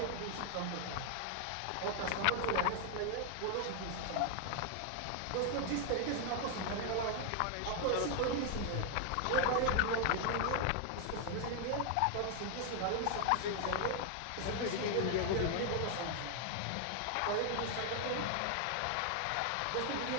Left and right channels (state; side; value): different; both; correlation 0.00